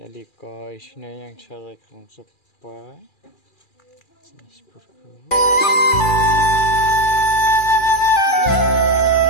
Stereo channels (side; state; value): right; late; 2.4 ms